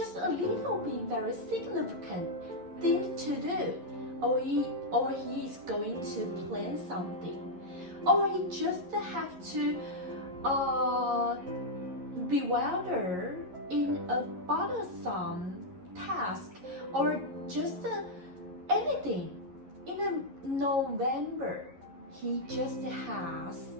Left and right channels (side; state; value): left; late; 11 ms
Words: a little bit very significant thing to do, or he is going to plan something, or he just have to bewilder in a bothersome task, or just anything. In November, he just has